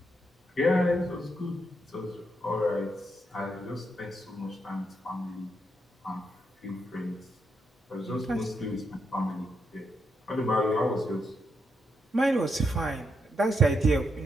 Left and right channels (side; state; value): both; normal; correlation 0.80